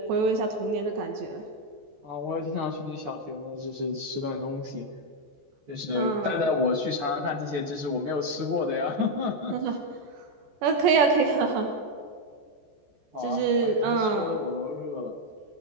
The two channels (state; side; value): late; left; 14 ms